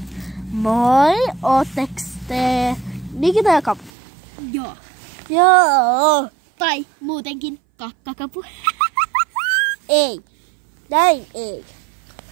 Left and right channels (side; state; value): left; drops out; at 3.9 s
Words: Moi, ootteks te Nikita ja Kapu? Joo. Joo. Tai muutenkin kakkakapu. Ei. Näin ei.